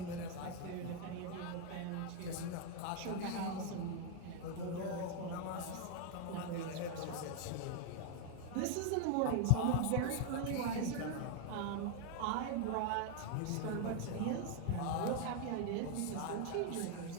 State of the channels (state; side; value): different; both; correlation 0.00